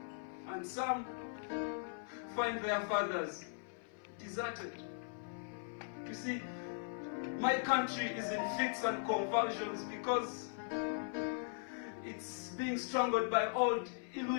And some find their fathers deserted. You see, my country is in fits and convulsions because it's being strangled by old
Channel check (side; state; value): right; silent; 51 dB below the other